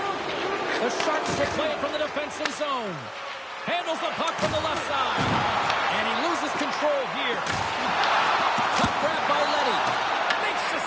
The Sharks will play it from the defensive zone. Handles the puck from the left side. And he loses control here. Puck grabbed by Letty. Makes the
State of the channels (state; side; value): identical; both; correlation 1.00